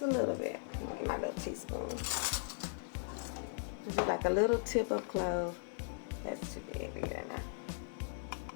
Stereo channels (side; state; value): right; silent; digital silence